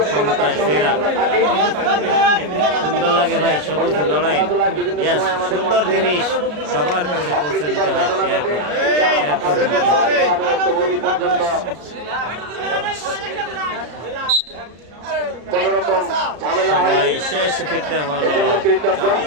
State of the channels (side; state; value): left; late; 33 ms